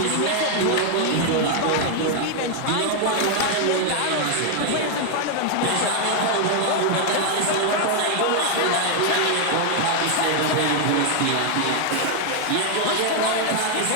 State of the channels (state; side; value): different; both; correlation 0.00